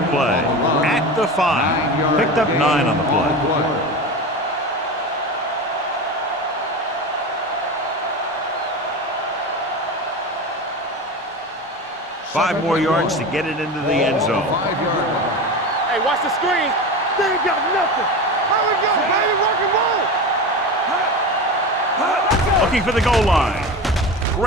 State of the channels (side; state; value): both; normal; correlation 0.27